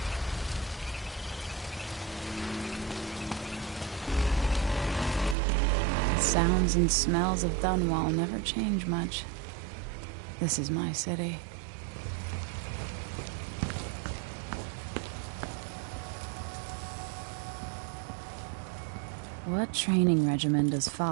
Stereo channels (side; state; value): left; drops out; at 5.4 s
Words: The sounds and smells of Dunwall never change much. This is my city. What training regimen does